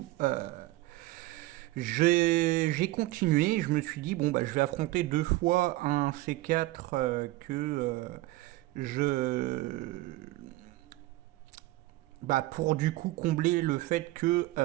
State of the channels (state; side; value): quieter; left; 18.3 dB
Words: j'ai continué. Je me suis dit bon je vais affronter deux fois un C4 je pour du coup combler le fait que